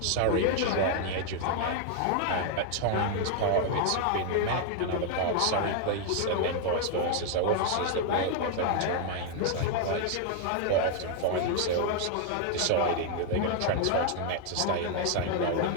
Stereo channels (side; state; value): both; different; correlation 0.00